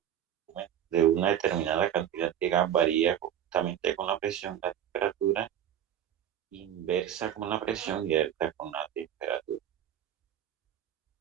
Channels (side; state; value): left; quieter; 10.2 dB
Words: de una determinada cantidad de gas varía conjuntamente con la presión, la temperatura, inversa con la presión y alta con la temperatura.